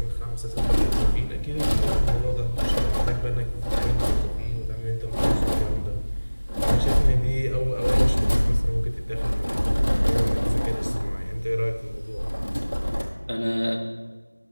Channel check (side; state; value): both; inverted; correlation -1.00